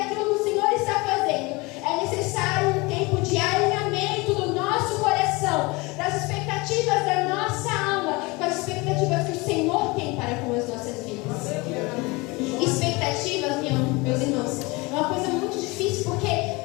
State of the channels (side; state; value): right; quieter; 24.8 dB